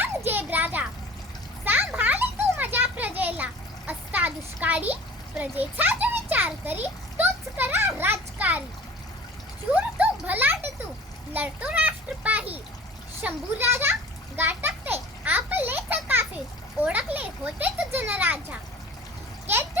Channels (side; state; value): both; normal; correlation 0.43